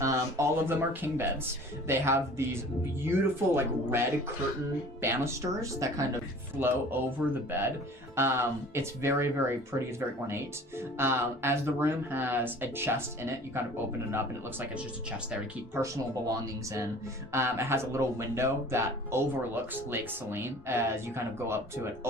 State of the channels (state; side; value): normal; both; correlation 0.46